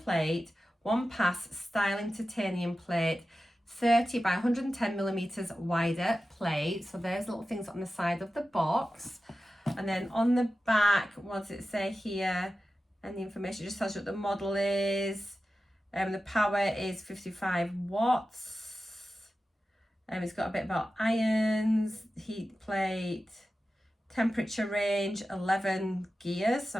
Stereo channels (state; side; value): normal; both; correlation 0.93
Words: one pass styling titanium plate, 30 by 110 millimeters wider plate. So there's little things on the side of the box. And then on the back, what does it say here? And the information just tells you what the model is. The power is 55 watts. It's got a bit about irons, heat plate, temperature range, 11 gears. So